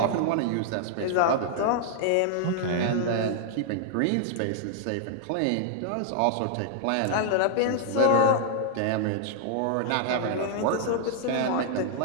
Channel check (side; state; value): both; different; correlation -0.01